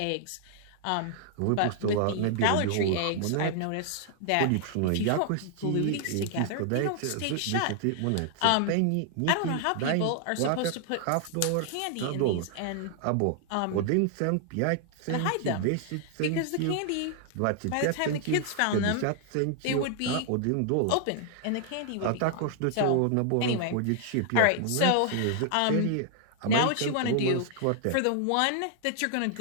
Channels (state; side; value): different; both; correlation 0.00